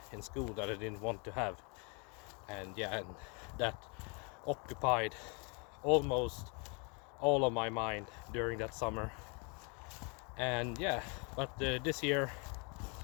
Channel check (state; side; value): quieter; right; 33.7 dB